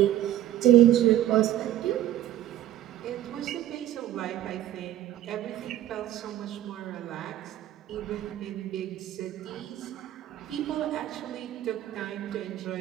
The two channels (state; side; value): quieter; left; 13.0 dB